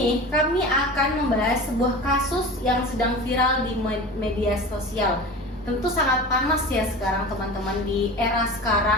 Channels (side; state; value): both; normal; correlation 0.33